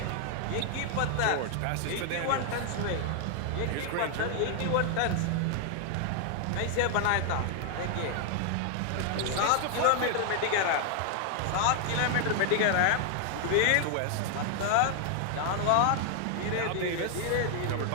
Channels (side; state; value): both; different; correlation 0.00